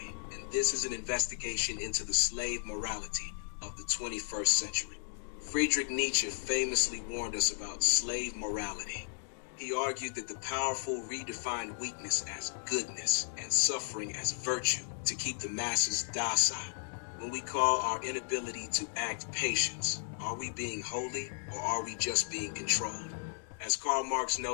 and this is an investigation into the slave morality of the 21st century. Friedrich Nietzsche famously warned us about slave morality. He argued that the powerful redefined weakness as goodness and suffering as virtue to keep the masses docile. When we call our inability to act patience, are we being holy or are we just being controlled? As Karl Marx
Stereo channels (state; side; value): silent; right; digital silence